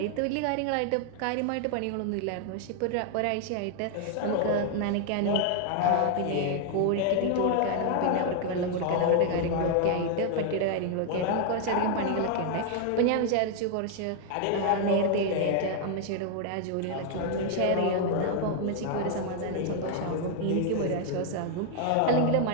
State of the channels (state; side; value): different; both; correlation 0.00